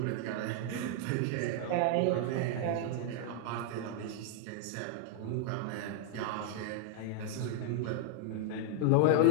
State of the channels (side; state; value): both; different; correlation -0.01